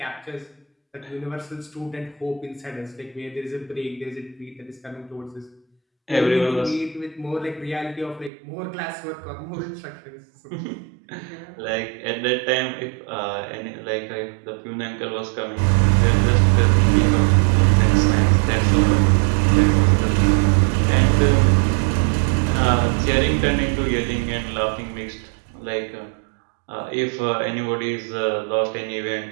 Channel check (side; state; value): left; drops out; at 8.3 s